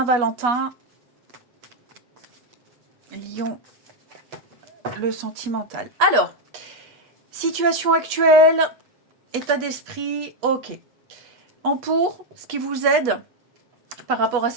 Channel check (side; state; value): left; late; 8.3 ms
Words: lion, le sentimental. Alors, situation actuelle, état d'esprit, ok. En pour, ce qui vous aide par rapport à